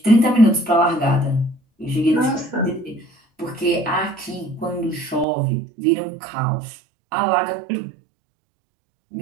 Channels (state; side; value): drops out; left; at 5.2 s